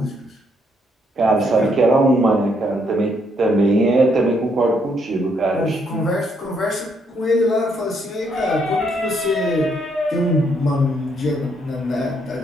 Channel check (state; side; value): normal; both; correlation 0.73